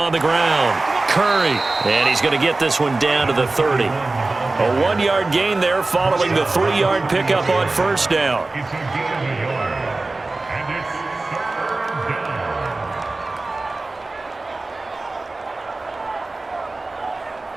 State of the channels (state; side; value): quieter; left; 3.2 dB